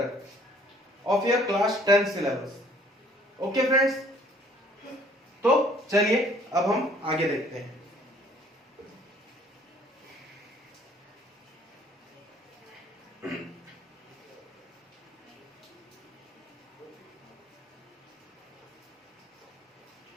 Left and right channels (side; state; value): both; normal; correlation 0.58